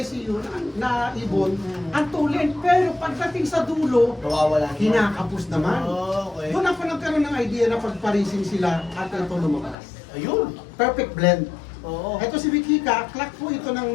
yun, na ibon, ang tulin. Pero pagdating sa dulo, Nawawala. kinakapos naman. Oh, okay. Doon ako nagkaroon ng idea na pagparising sila at ito lumabas. Ayun. Perfect blend. Oo. Ito si Wikika, clock po ito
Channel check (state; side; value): drops out; right; at 9.8 s